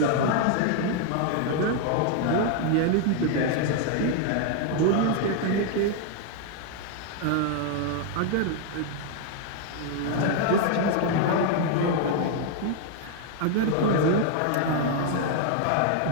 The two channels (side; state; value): both; different; correlation 0.00